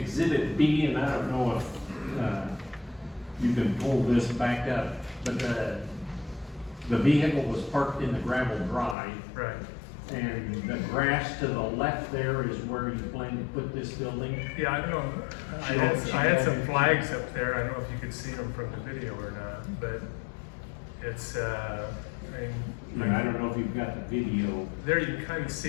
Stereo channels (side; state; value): right; drops out; at 9.0 s